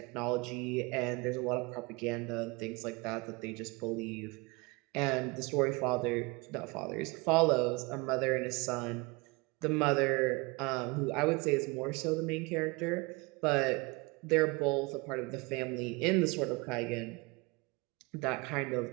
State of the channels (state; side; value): quieter; left; 26.5 dB